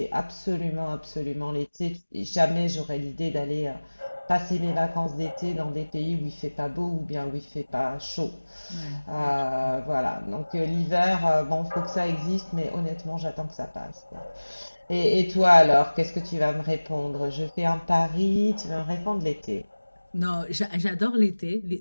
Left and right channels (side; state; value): both; inverted; correlation -1.00